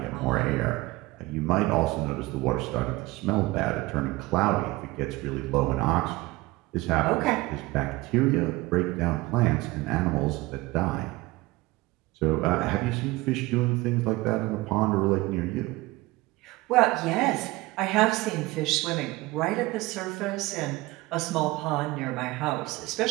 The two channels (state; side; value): quieter; left; 20.6 dB